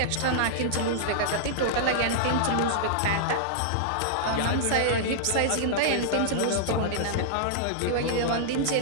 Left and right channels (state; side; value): different; both; correlation -0.02